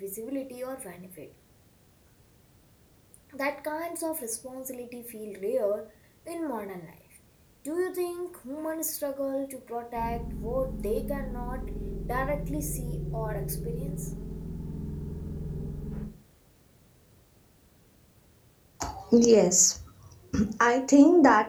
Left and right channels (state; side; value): identical; both; correlation 1.00